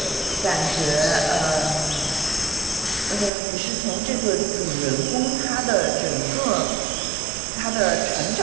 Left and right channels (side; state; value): left; drops out; at 3.3 s